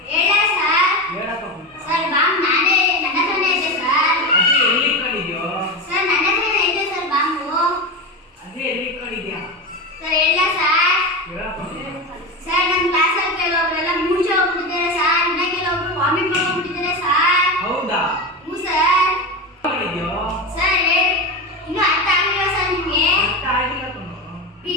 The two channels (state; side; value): normal; both; correlation 0.20